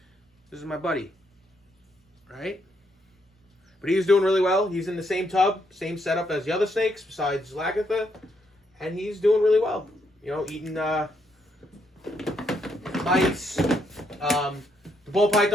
This is my buddy, right? But he's doing really well. He's in the same tub, same setup as the other snakes besides Lagatha, and he's doing really well. You know, eating mice. The ball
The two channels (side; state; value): both; normal; correlation 0.75